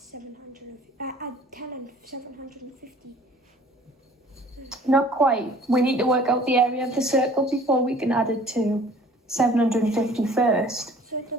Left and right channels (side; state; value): both; normal; correlation 0.51